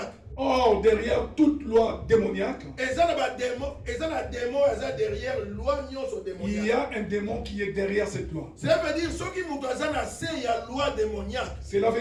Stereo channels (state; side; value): identical; both; correlation 1.00